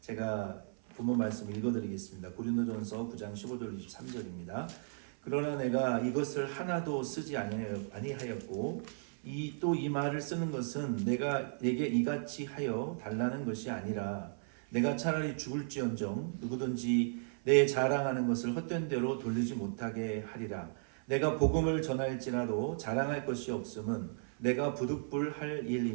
본문 말씀 읽어드리겠습니다. 고린도전서 9장 15절 23절입니다. 그러나 내가 이것을 하나도 쓰지 아니하였고 또 이 말을 쓰는 것은 내가 내게 이같이 하여 달라는 것이 아니라 내가 차라리 죽을지언정 누구든지 내 자랑하는 것을 헛된 대로 돌리지 못하게 하리라. 내가 복음을 전할지라도 자랑할 것이 없음은 내가 부득불할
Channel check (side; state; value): left; silent; 54 dB below the other